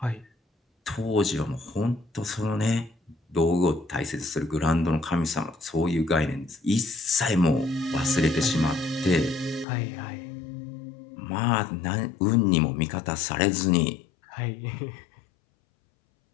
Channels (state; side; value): drops out; right; at 9.7 s